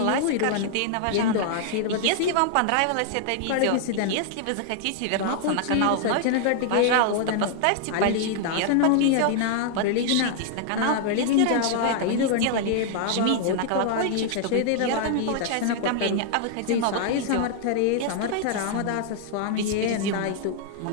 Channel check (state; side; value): different; both; correlation 0.00